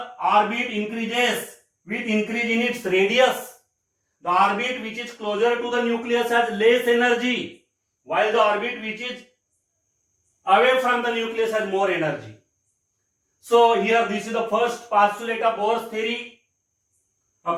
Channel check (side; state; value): both; identical; correlation 1.00